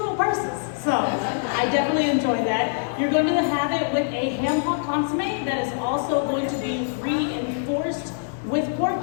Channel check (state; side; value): silent; right; 63 dB below the other